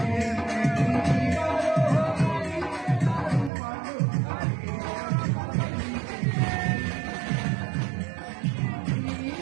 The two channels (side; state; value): left; drops out; at 3.5 s